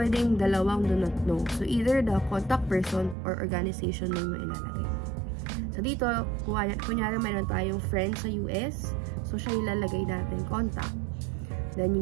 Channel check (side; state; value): left; drops out; at 3.2 s